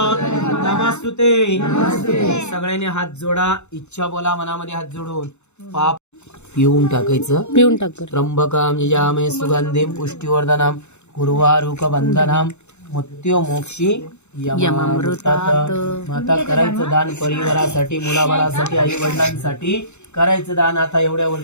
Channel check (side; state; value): right; late; 0.82 ms